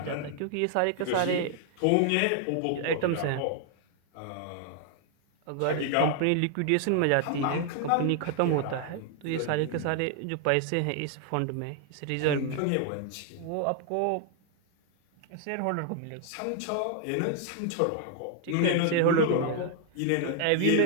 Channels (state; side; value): different; both; correlation 0.00